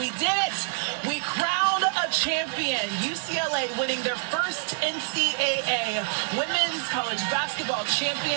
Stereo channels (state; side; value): silent; left; digital silence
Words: did it. We crowned a champion. UCLA winning their first NCAA Women's College Basketball